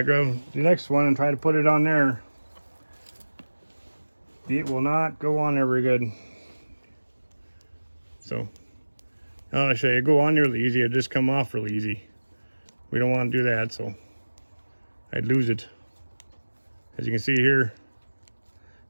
grab the next one and try to put it on there, it will not go on there very good. So, I'll show you, go on there really easy, it'll just come off really easy. We don't want to do that, so I'd lose it. As you can see here,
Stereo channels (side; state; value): both; inverted; correlation -1.00